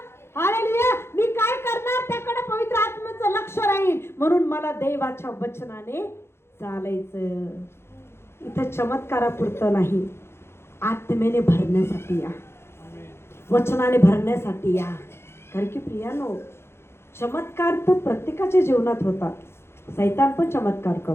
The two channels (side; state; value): right; late; 0.12 ms